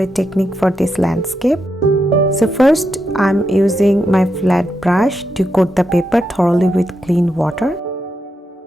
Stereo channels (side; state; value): both; normal; correlation 0.84